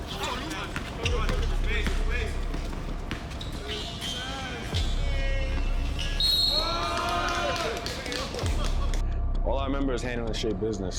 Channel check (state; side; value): identical; both; correlation 1.00